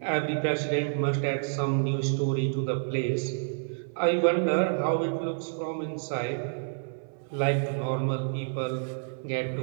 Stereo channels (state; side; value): silent; left; 59 dB below the other